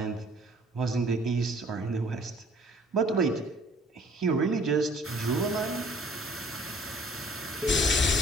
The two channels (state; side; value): normal; both; correlation 0.55